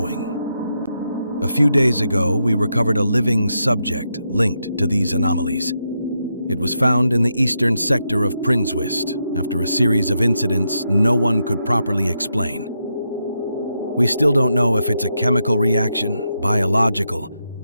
A few days ago, we recovered a living subject linked to these anomalies. It was found in the eastern sector of Prinswist after a series of incidents no one could properly explain. We still don't know if it's a chemical reaction, biological,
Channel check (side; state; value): both; inverted; correlation -0.83